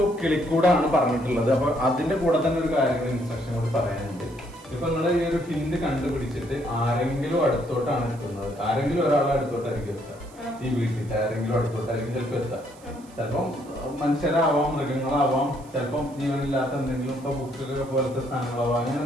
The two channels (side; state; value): right; noise; hiss, 25 dB below the sound